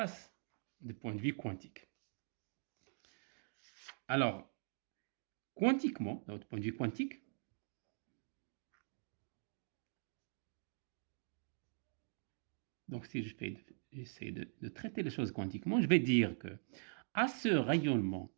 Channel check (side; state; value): left; silent; digital silence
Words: du point de vue quantique. Alors, quantiquement, d'un point de vue quantique, donc si j'essaie de traiter les choses quantiquement, je vais dire que à ce rayonnement,